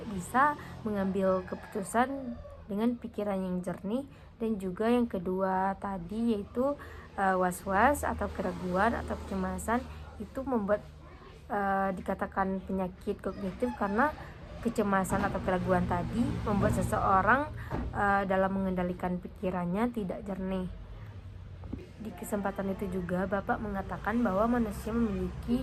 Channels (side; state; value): both; identical; correlation 1.00